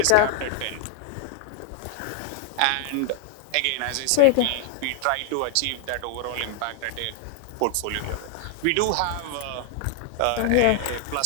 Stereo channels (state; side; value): different; both; correlation 0.00